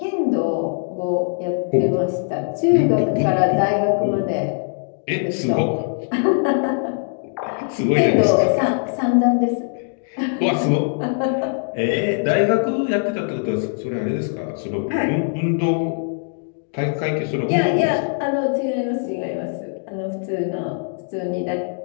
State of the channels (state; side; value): silent; right; 65 dB below the other